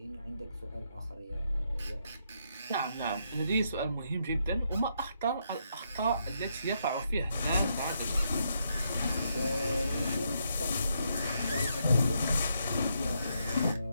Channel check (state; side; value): inverted; both; correlation -0.78